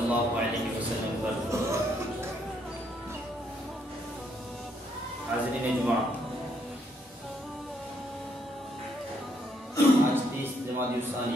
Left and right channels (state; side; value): normal; both; correlation 0.73